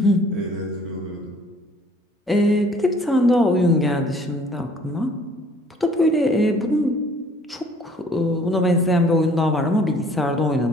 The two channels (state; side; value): normal; both; correlation 0.57